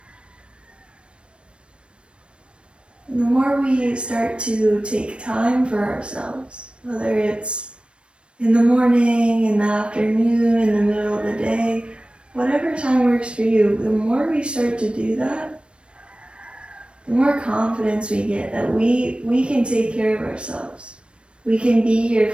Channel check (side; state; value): left; late; 0.056 ms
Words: And the more we start to take time for ourselves, whether it's in the morning, in the afternoon, in the middle of the day, whatever time works for you, the more we start to do that, the more confidence we get that we can take care of ourselves. We can be here